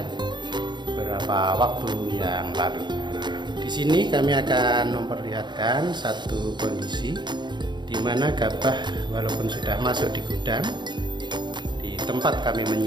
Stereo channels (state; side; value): late; left; 0.22 ms